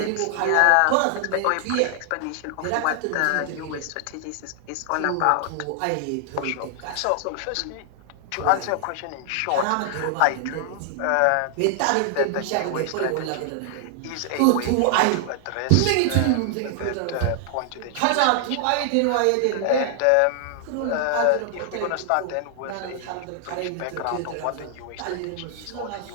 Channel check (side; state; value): both; different; correlation 0.00